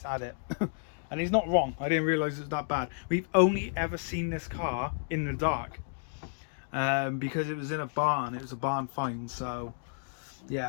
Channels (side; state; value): right; silent; digital silence